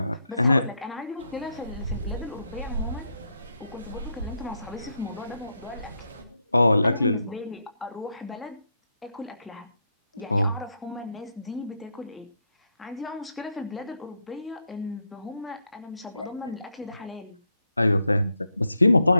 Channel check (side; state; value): both; inverted; correlation -0.78